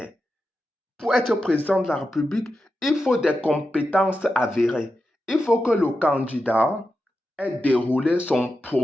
Pour être président de la République, il faut des compétences avérées. Il faut que le candidat ait déroulé son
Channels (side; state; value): both; normal; correlation 0.89